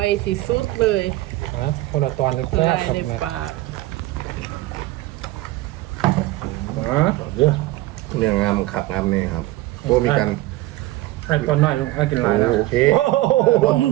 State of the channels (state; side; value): quieter; left; 17.5 dB